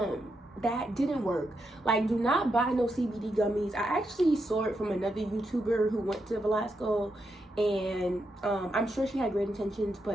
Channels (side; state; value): both; normal; correlation 0.83